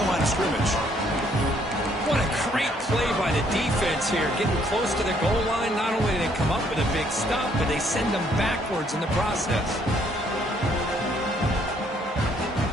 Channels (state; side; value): normal; both; correlation 0.67